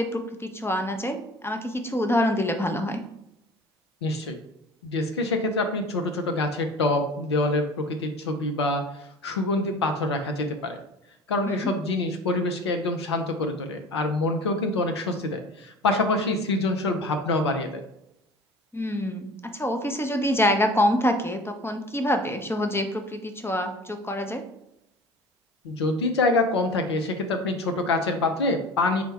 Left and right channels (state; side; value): normal; both; correlation 0.41